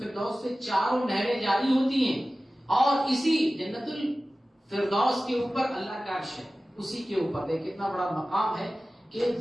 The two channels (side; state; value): both; normal; correlation 0.96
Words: سے 4 نہریں جاری ہوتی ہیں، اور اسی جنت الفردوس کے اوپر اللہ کا عرش ہے، اسی کے اوپر دیکھ کتنا بڑا مقام ہے کہ